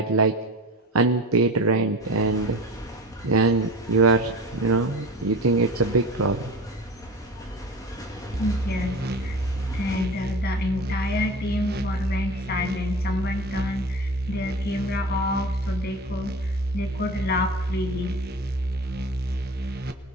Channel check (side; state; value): both; normal; correlation 0.33